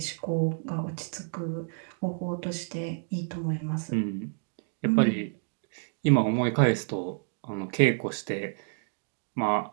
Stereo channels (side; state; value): left; silent; 58 dB below the other